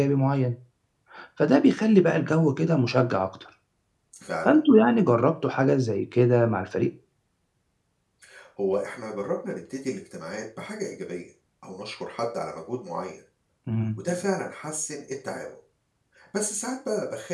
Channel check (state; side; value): identical; both; correlation 1.00